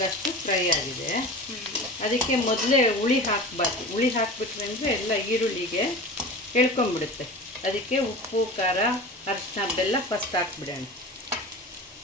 ಅಷ್ಟು ಫ್ರೈ ಆಗಿದೆ. ಅದಕ್ಕೆ ಮೊದಲೇ ಹುಳಿ ಹಾಕಬಾರ್ದು. ಹುಳಿ ಹಾಕಿಬಿಟ್ರೆ ಅಂದರೆ ಎಲ್ಲ ಈರುಳ್ಳಿಗೆ ಎಳ್ಕೊಂಬಿಡುತ್ತೆ. ಅದಕ್ಕೆ ಉಪ್ಪು, ಖಾರ, ಅರಿಶಿನ, ಬೆಲ್ಲ ಫಸ್ಟ್ ಹಾಕ್ಬಿಡೋಣ.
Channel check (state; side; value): normal; both; correlation 0.34